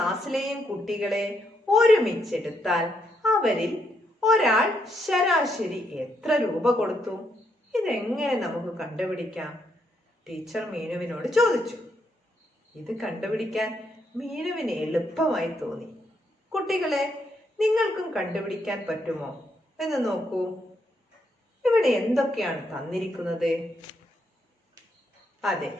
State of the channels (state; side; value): normal; both; correlation 0.76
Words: കുട്ടികളെ ഒരുമിച്ചെടുത്താൽ അവരിൽ ഒരാൾ ശരാശരി എത്ര രൂപ കൊടുത്തു? ഇതെങ്ങനെ നമുക്ക് കണ്ടുപിടിക്കാം? ടീച്ചർ മീനുവിനോട് ചോദിച്ചു. ഇത് കണ്ടുപിടിക്കാൻ മീനുവിന് എളുപ്പമായി തോന്നി. കുട്ടികളെ, നിങ്ങൾക്കും കണ്ടുപിടിക്കാൻ പറ്റുമോ എന്ന് നോക്കൂ. ഇവിടെ എന്തൊക്കെയാണ് തന്നിരിക്കുന്നത്? അതെ,